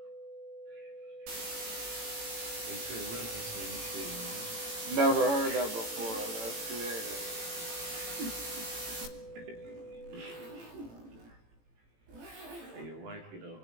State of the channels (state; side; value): late; left; 18 ms